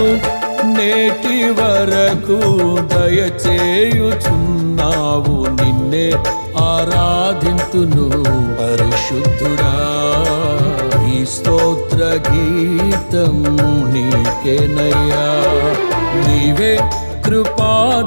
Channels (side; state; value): both; inverted; correlation -1.00